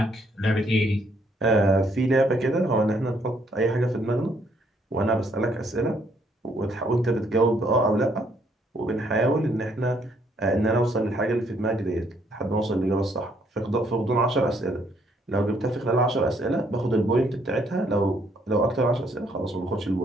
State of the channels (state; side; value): normal; both; correlation 0.69